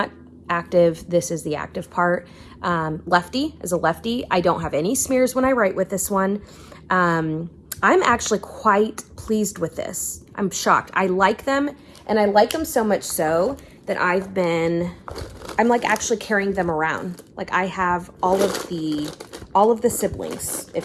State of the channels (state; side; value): identical; both; correlation 1.00